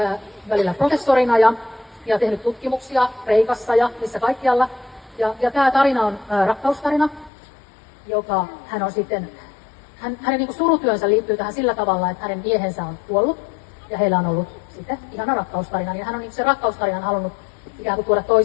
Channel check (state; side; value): drops out; right; at 7.3 s